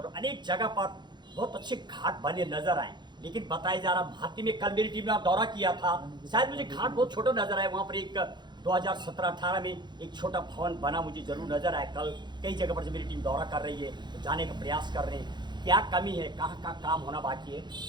लूँ, अनेक जगह पर बहुत अच्छे घाट बने नजर आए। लेकिन बताया जा रहा, भाती में कल मेरी टीम ने दौरा किया था, शायद मुझे घाट बहुत छोटा नजर आया, वहाँ पर एक 2017-18 में एक छोटा भवन बना मुझे जरूर नजर आया। कल कई जगह पर जब मेरी टीम दौरा कर रही है तो जाने का प्रयास कर रहे हैं, क्या कमी है, कहाँ कहाँ काम होना बाकी है।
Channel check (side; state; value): left; late; 0.21 ms